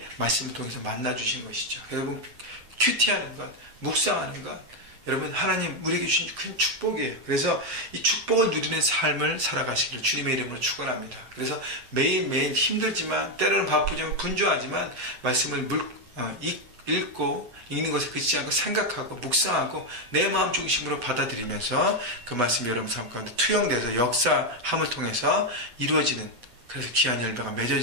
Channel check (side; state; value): left; late; 8.5 ms